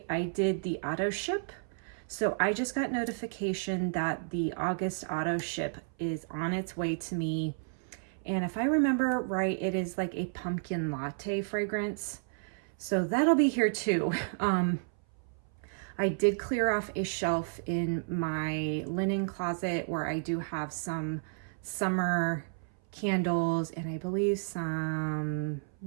I did the auto ship. So I just got notification that the August auto ship is on its way to me. And if I remember right, it is like a pumpkin latte fragrance. So that'll be here too. I did clear off a shelf in my linen closet where I do have some summer candles and I believe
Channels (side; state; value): left; silent; 57 dB below the other